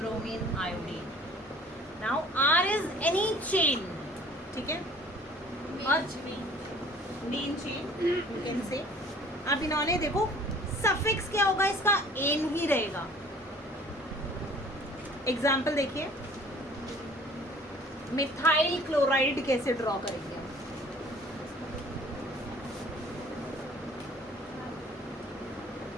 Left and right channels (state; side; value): normal; both; correlation 0.51